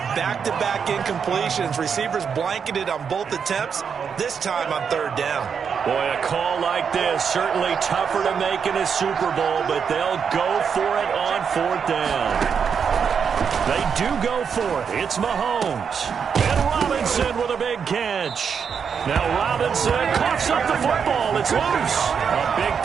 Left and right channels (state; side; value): quieter; left; 6.7 dB